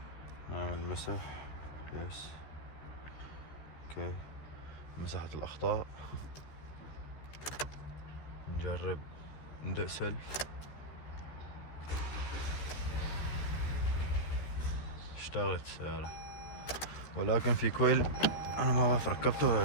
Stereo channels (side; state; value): right; late; 13 ms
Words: نعمل مسح يس اوكي. مسحت الأخطاء. نجرب ندق سلف. اشتغلت السيارة، ولكن في كويل انا ما بعرف ركبته ولا